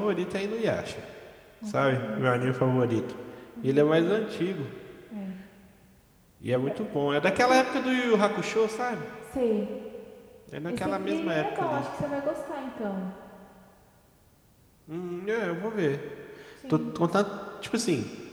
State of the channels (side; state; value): both; identical; correlation 1.00